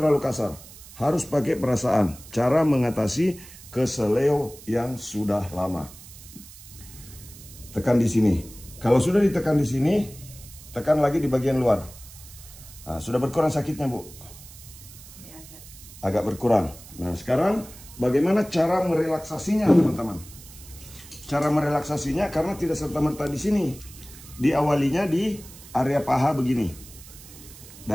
kasar. Harus pakai perasaan. Cara mengatasi keseleo yang sudah lama. Tekan di sini. Kalau sudah ditekan di sini, tekan lagi di bagian luar. Nah, sudah berkurang sakitnya, Bu? Agak berkurang. Nah, sekarang bagaimana cara merelaksasinya, teman-teman? cara merelaksasinya karena tidak serta-merta di sini. Diawalinya di area paha begini.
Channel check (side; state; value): right; noise; hiss, 18 dB below the sound